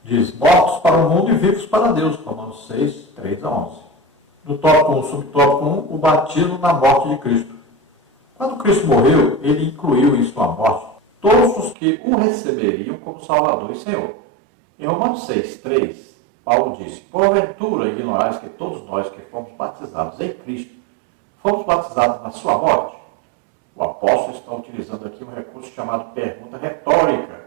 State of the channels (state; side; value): drops out; left; at 11.8 s